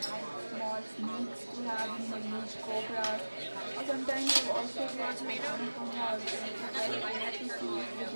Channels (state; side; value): inverted; both; correlation -1.00